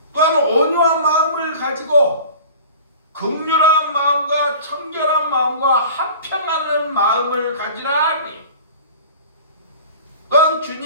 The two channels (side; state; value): both; inverted; correlation -0.41